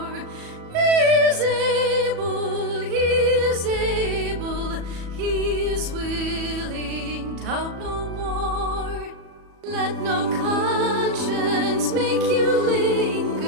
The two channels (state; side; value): late; left; 37 ms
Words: He is able, he is able, he is willing, doubt no more. Let no conscience make you